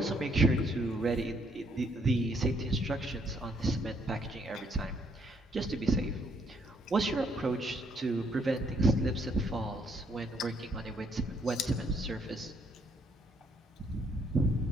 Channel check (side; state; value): both; normal; correlation 0.70